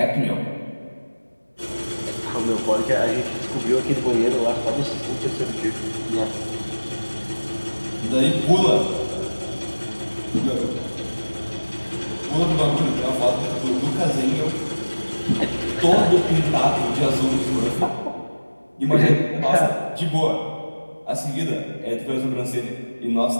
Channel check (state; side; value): inverted; both; correlation -1.00